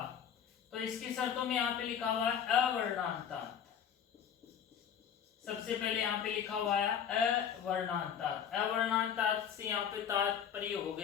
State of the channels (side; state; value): right; quieter; 8.3 dB